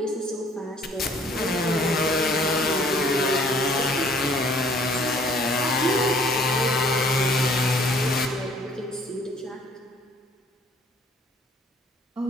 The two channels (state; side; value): normal; both; correlation 0.58